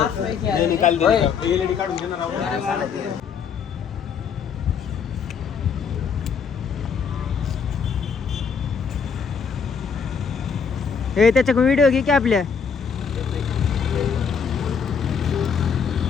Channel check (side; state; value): right; quieter; 6.3 dB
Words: हे त्याच्या व्हिडिओ घे की आपल्या